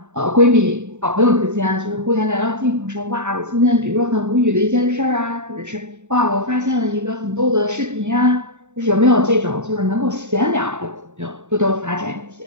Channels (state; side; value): late; left; 0.84 ms